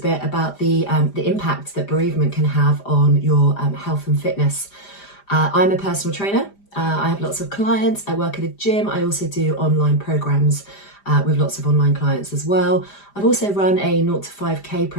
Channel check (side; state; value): right; late; 5.0 ms